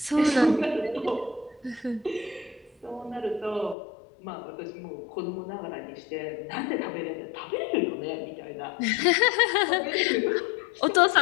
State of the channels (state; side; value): drops out; right; at 3.8 s